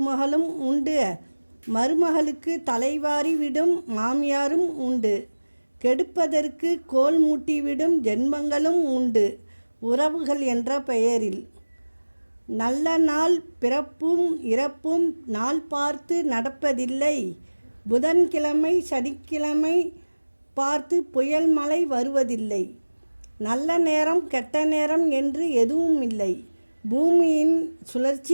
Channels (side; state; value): both; inverted; correlation -1.00